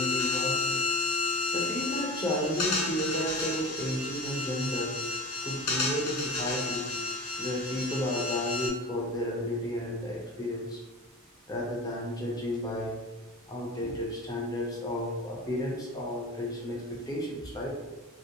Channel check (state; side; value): normal; both; correlation 0.31